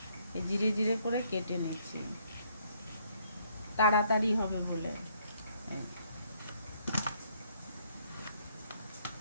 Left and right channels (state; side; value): inverted; both; correlation -0.68